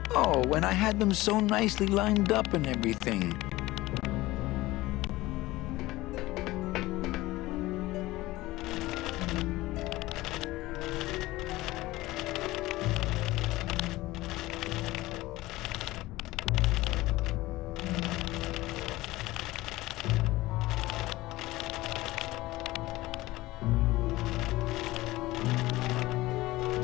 Oh, and I had them so nicely lined up and everything.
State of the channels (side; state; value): right; quieter; 18.5 dB